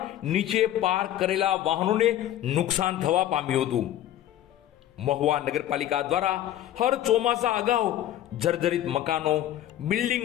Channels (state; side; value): quieter; right; 12.5 dB